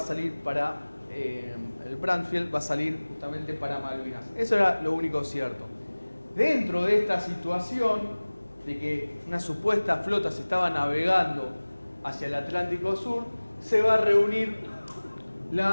para... el Brandfield va a salir justamente para Malvinas. Eso era lo único cierto. Dentro de esta situación de que una supuesta flota se estaba navegando hacia el Atlántico Sur, se va a reunir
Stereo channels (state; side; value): inverted; both; correlation -1.00